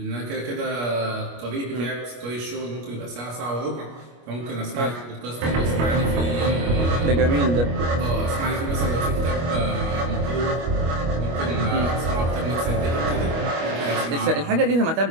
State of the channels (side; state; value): left; late; 25 ms